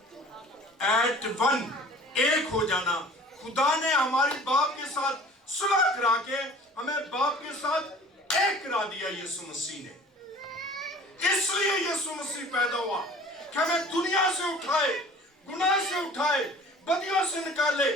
एट वन, एक हो जाना। खुदा ने हमारी बाप के साथ सुलह करा के हमें बाप के साथ एक करा दिया यीशु मसीह ने। इसलिए यीशु मसीह पैदा हुआ कि हमें दुनिया से उठाए, गुनाह से उठाए, बदियों से निकाले,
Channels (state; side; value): normal; both; correlation 0.46